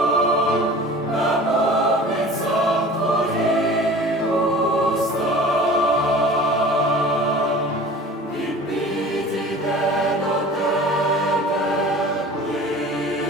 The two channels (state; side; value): normal; both; correlation 0.42